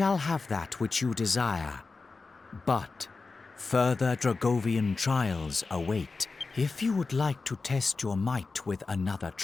have that which you desire, but further Dragovian trials await. If you would like to test your might with another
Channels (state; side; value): quieter; right; 4.1 dB